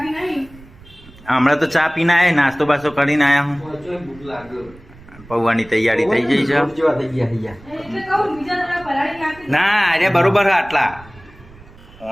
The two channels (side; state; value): right; noise; rumble, 22 dB below the sound